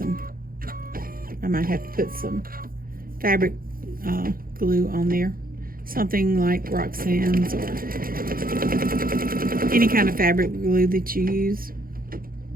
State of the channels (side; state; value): left; late; 0.42 ms